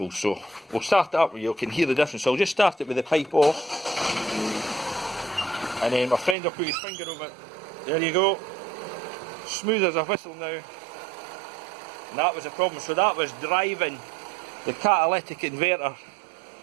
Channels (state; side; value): drops out; left; at 6.4 s